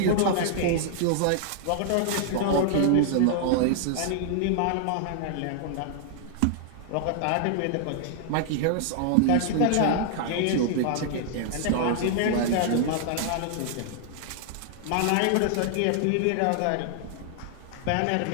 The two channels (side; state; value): both; different; correlation -0.01